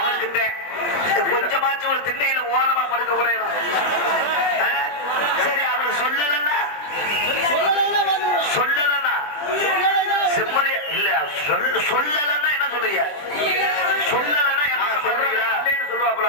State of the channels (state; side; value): late; right; 20 ms